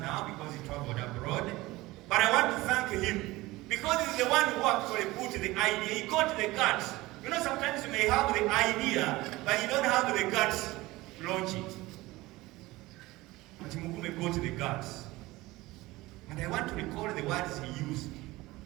because he traveled abroad. But I want to thank him because he's the one who actually put the idea. He got the guts. You know, sometimes you may have the idea, but you don't have the guts to launch it. But Mugume got the guts. And I want to recall the words he used.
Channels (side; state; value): left; quieter; 19.6 dB